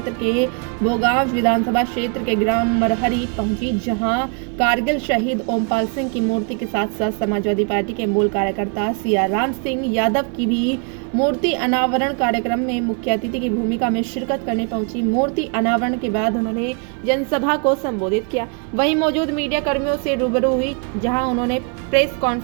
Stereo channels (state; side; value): quieter; left; 38.0 dB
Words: के भोगांव विधानसभा क्षेत्र के ग्राम मरहरी पहुंची, जहां कारगिल शहीद ओमपाल सिंह की मूर्ति के साथ साथ समाजवादी पार्टी के मूल कार्यकर्ता सियाराम सिंह यादव की भी मूर्ति अनावरण कार्यक्रम में मुख्य अतिथि की भूमिका में शिरकत करने पहुंची। मूर्ति अनावरण के बाद उन्होंने जनसभा को संबोधित किया। वहीं मौजूद मीडिया कर्मियों से रूबरू हुई, जहां उन्होंने प्रेस